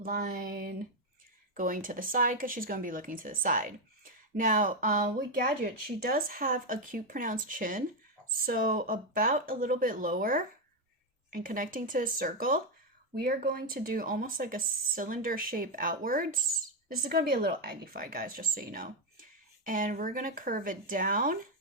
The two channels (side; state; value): both; normal; correlation 0.05